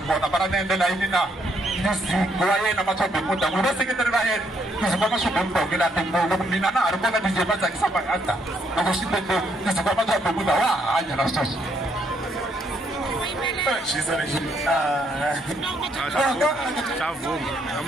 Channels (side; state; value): both; normal; correlation 0.72